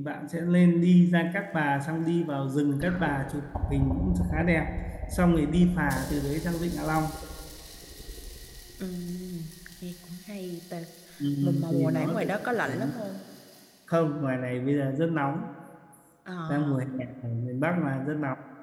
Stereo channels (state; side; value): identical; both; correlation 1.00